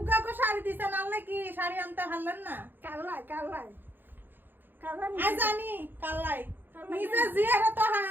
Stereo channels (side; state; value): left; late; 0.093 ms